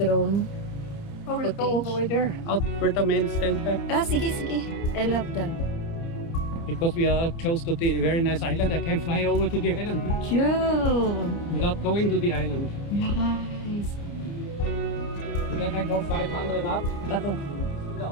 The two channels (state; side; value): late; right; 29 ms